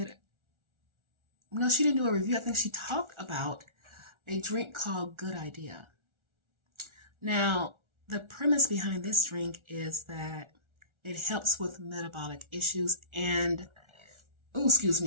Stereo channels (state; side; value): late; left; 1.4 ms